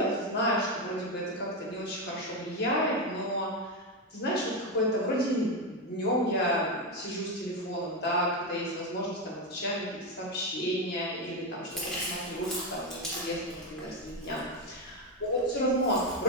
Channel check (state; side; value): normal; both; correlation 0.10